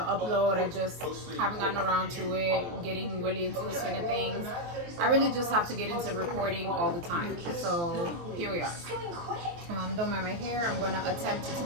I just haven't gotten around to it, getting really into the swing of things. I really just have to get into recording all the time. So here we are. Don't mind my hair. I'm gonna attempt to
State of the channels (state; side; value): late; left; 23 ms